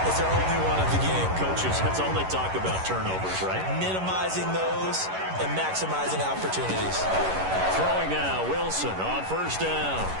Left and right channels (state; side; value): late; left; 11 ms